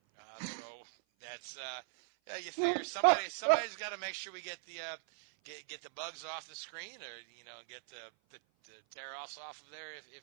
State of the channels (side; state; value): left; silent; 52 dB below the other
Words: So that's you figure somebody's got to make sure we get the bugs off the screen, or get the tear us off of there